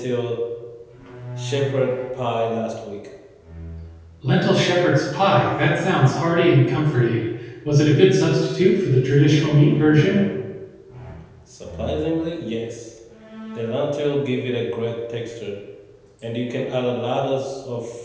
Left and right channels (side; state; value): both; identical; correlation 1.00